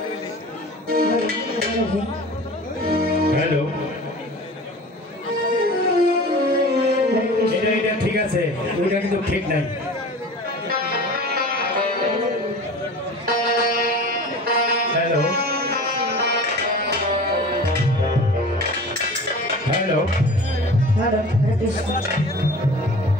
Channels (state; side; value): normal; both; correlation 0.39